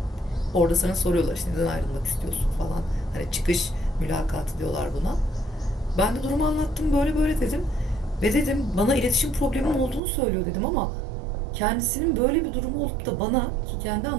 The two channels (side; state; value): left; drops out; at 10.0 s